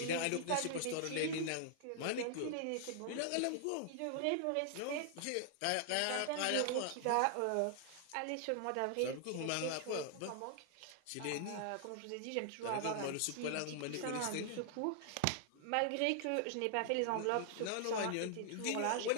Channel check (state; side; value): different; both; correlation 0.00